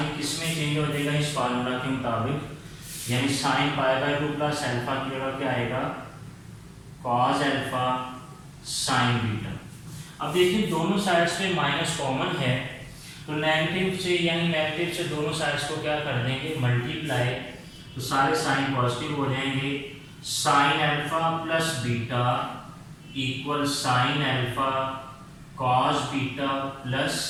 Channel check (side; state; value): both; identical; correlation 1.00